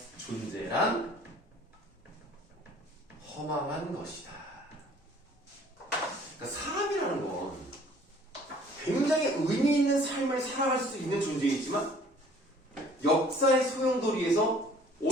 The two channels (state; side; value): normal; both; correlation 0.54